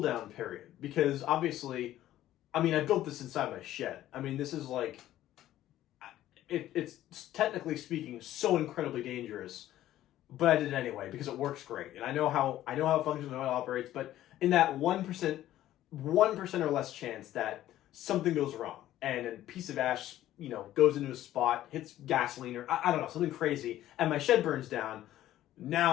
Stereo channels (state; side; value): quieter; right; 13.5 dB